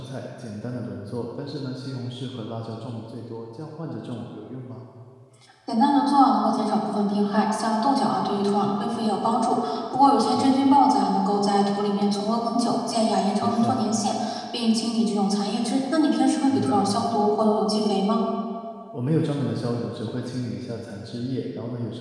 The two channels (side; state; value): both; identical; correlation 1.00